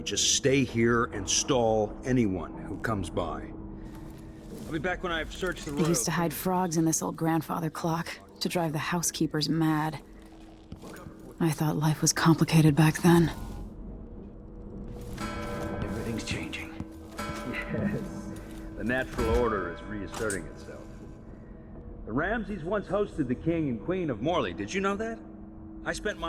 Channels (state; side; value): identical; both; correlation 1.00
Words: Just stay here and stall anyone who comes by. I'll be back when I've searched the road. They used to hide frogs in this old grandfather clock to drive the housekeepers mad. I thought life was complicated back then. Everything's changing. Yes. The natural order is reasserting itself. The Ramseys once hosted the king and queen of Morley. Did you know that? I spent